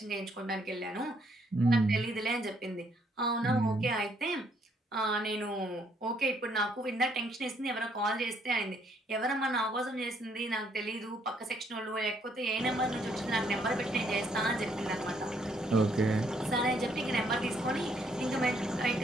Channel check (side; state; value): both; normal; correlation 0.69